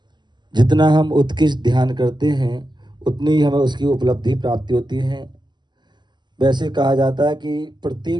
जितना हम उत्कृष्ट ध्यान करते हैं उतनी ही हमें उसकी उपलब्धि प्राप्ति होती है। वैसे कहा जाता है कि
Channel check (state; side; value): late; left; 0.21 ms